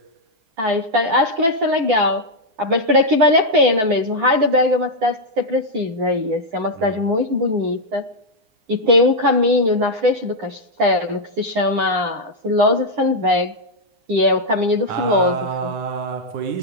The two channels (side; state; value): left; late; 9.7 ms